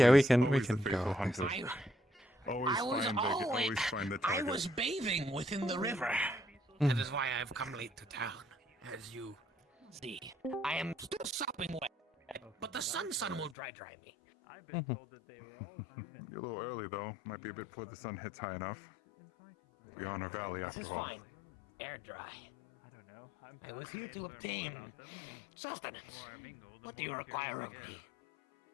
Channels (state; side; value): drops out; right; at 13.6 s